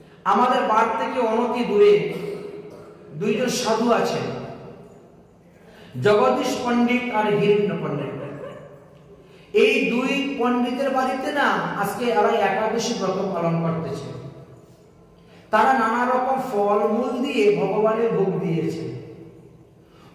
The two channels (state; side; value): identical; both; correlation 1.00